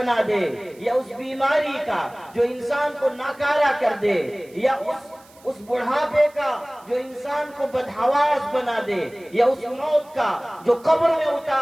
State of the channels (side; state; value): right; noise; hiss, 27 dB below the sound